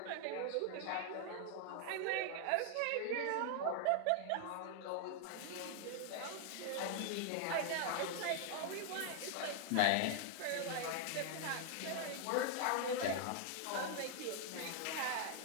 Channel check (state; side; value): different; both; correlation 0.00